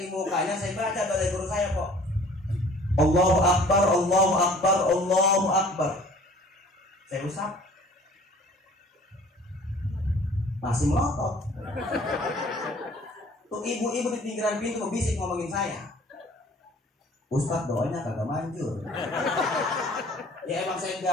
di mukanya, saya baca dari guru saya kok. Allahu Akbar, Allahu Akbar, Allahu Akbar. Saya usap. Masih melotot. Tuh ibu-ibu di pinggiran pintu bisik ngomongin saya. Ustaz doanya kagak manjur. Ya emang saya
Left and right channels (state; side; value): normal; both; correlation 0.50